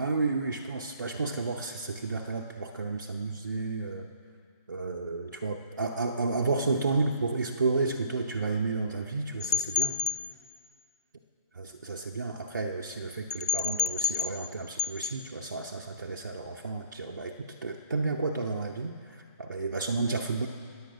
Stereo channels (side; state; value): both; inverted; correlation -0.53